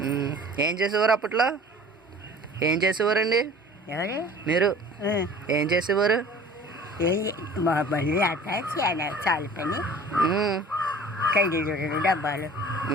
ఏం చేసేవారు అప్పట్లో? ఏం చేసేవారండి ఎవరు? మీరు ఏం చేసేవారు? మా బండి అట్ట చాలు పని, కైలు డబ్బాలు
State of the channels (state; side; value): normal; both; correlation 0.46